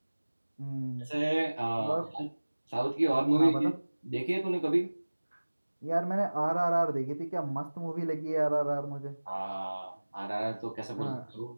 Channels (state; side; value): inverted; both; correlation -1.00